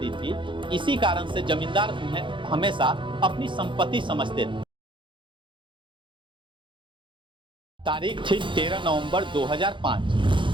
थी, इसी कारण से जमींदार उन्हें हमेशा अपनी संपत्ति समझते थे। तारीख थी 13 नवंबर 2005।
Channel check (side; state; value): left; late; 0.24 ms